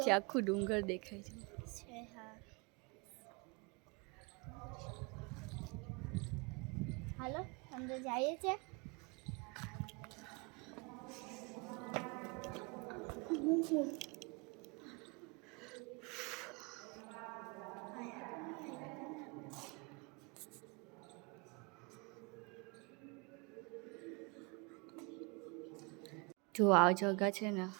આખું ડુંગર દેખાય છે. છે. હા હાલો અંદર જઈએ છે. જો આ જગા છે ને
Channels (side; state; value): left; quieter; 30.4 dB